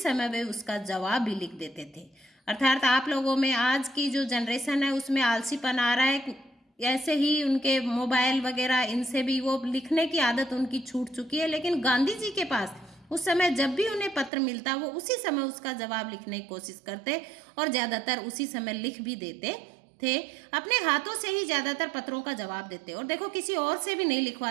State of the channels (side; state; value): left; drops out; at 14.3 s